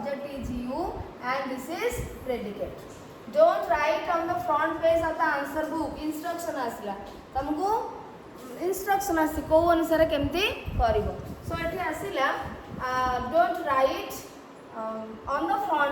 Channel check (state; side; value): identical; both; correlation 1.00